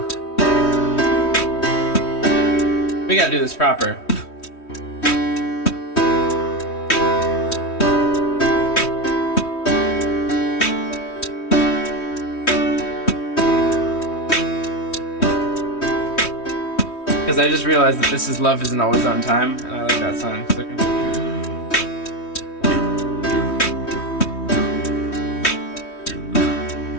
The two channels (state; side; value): late; right; 3.1 ms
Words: We gotta do this proper. Because I just realized that this is Love Isn't Always on Time, and I like that song. So